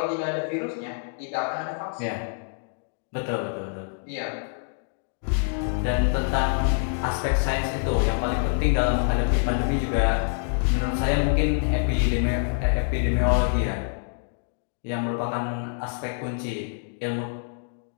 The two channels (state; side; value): silent; right; digital silence